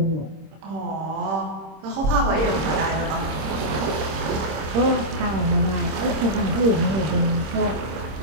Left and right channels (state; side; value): late; left; 26 ms